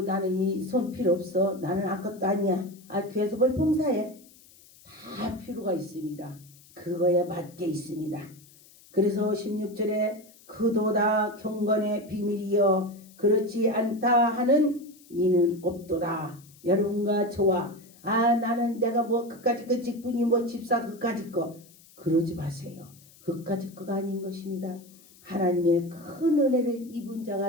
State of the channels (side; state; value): left; noise; hiss, 25 dB below the sound